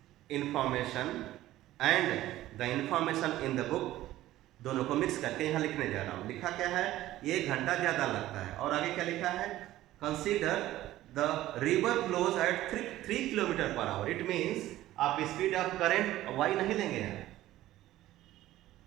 information and the information in the book, दोनों को मिक्स करके यहाँ लिखने जा रहा हूँ। लिखा क्या है, 1 घंटा ज्यादा लगता है, और आगे क्या लिखा है, consider the river flows at 3 kilometres per hour. It means आप स्पीड ऑफ करंट y नहीं लेंगे यहाँ,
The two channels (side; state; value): left; quieter; 15.0 dB